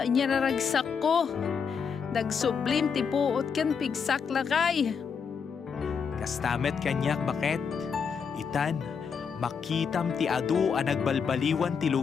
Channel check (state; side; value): quieter; right; 6.3 dB